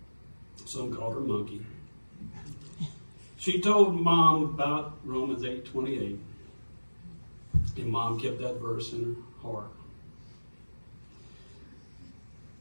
Some called her Monkey. She told Mom about Romans 8:28, and Mom kept that verse in her heart.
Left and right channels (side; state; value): both; inverted; correlation -1.00